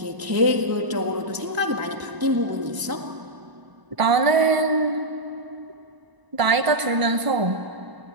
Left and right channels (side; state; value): left; late; 1.0 ms